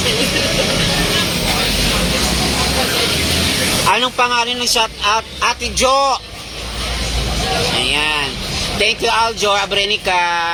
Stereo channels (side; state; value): both; identical; correlation 1.00